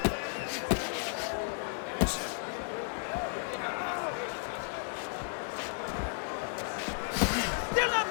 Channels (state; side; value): silent; right; 55 dB below the other